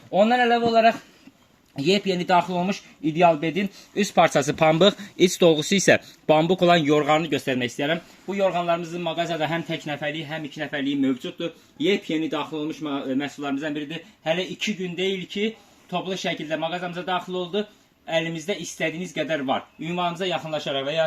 Ondan əlavə olaraq yepyeni daxil olmuş İdealbetin üst parçası pambıq, iç dolgusu isə bambuq olan yorğanını göstərmək istəyirəm. Bu yorğanlarımızın mağazada həm tək nəfərliyi, həm 2 nəfərliyi mövcuddur. Yepyeni daxil olmuş məhsullarımızdan biridir. Hələ 2 gün deyil ki, toplu şəkildə mağazamıza daxil oldu. Əlimizdə istədiyiniz qədər var. Ünvanımıza yaxınlaşaraq və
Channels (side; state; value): both; identical; correlation 1.00